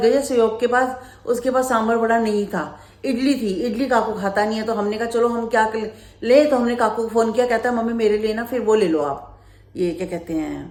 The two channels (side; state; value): both; identical; correlation 1.00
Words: सहयोग के पास, उसके पास सांभर वड़ा नहीं था, इडली थी, इडली काकू खाता नहीं है। तो हमने कहा चलो हम क्या ले, तो हमने काकू को फोन किया, कहता है मम्मी मेरे लिए ना फिर वो ले लो आप, ये क्या कहते